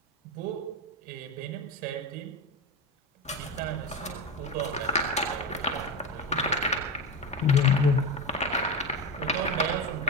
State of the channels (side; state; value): both; normal; correlation 0.18